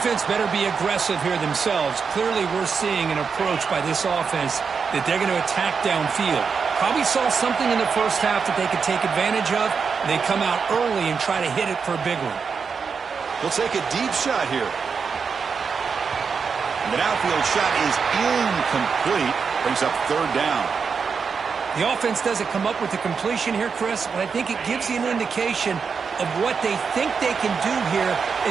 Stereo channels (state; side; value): quieter; left; 5.7 dB